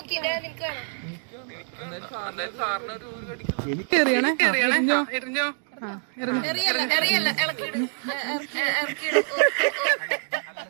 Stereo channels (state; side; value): silent; left; 59 dB below the other